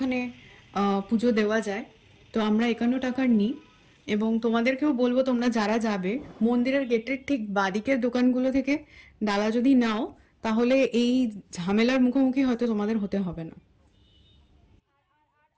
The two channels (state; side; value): identical; both; correlation 1.00